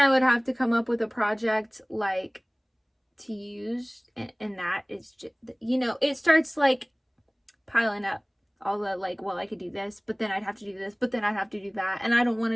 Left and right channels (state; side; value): identical; both; correlation 1.00